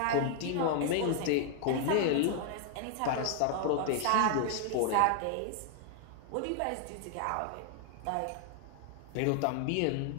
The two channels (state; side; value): different; both; correlation 0.00